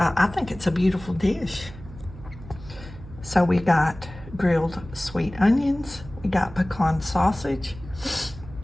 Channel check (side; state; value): right; noise; hum, 16 dB below the sound